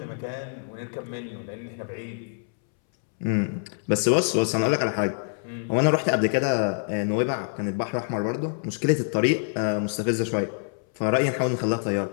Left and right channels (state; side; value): silent; right; 61 dB below the other